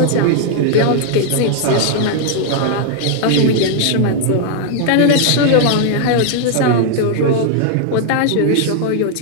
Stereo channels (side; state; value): both; different; correlation 0.00